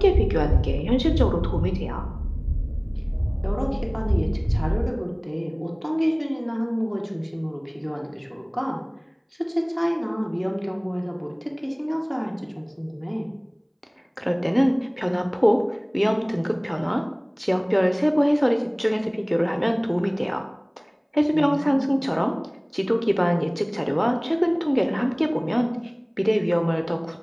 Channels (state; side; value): identical; both; correlation 1.00